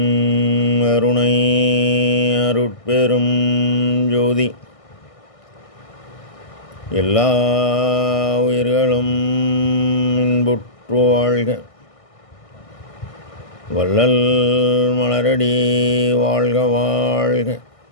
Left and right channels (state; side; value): late; right; 1.6 ms